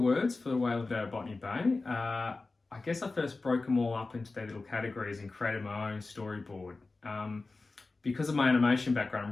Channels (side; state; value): right; quieter; 3.6 dB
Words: for The Whale of a Day at Botany Bay, I guess I first broke them all up into their little categories and created my own storyboard. Because of my animation background,